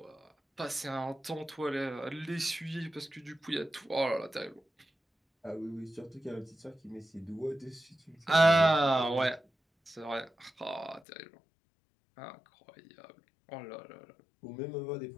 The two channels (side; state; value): right; drops out; at 11.0 s